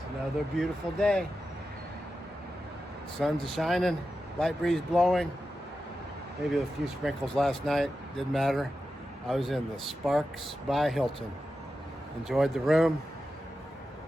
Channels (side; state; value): both; normal; correlation 0.91